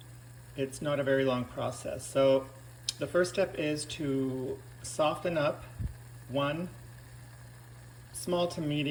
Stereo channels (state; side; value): identical; both; correlation 1.00